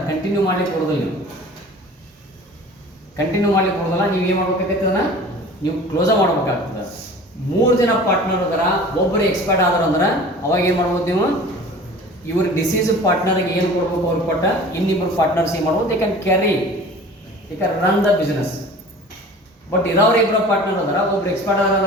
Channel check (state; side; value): normal; both; correlation 0.42